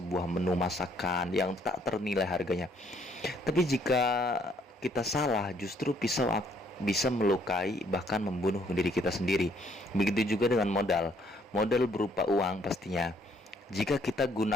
menu masakan yang tak ternilai harganya. Tapi jika kita salah, justru pisau bisa melukai bahkan membunuh diri kita sendiri. Begitu juga dengan modal. Modal berupa uang pastinya. Jika kita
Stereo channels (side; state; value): both; normal; correlation 0.66